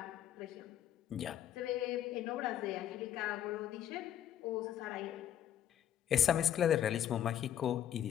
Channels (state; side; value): quieter; right; 10.5 dB